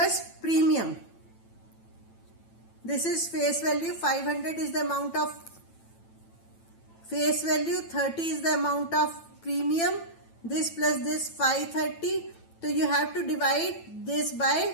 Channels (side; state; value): right; late; 9.0 ms